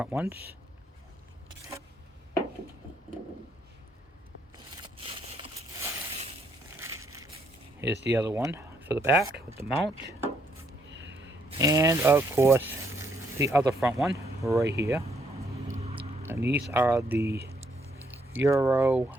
ones. Here's the other one for the back with the mount. And of course, the other front one right here. And these are the Euro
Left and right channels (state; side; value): normal; both; correlation 0.71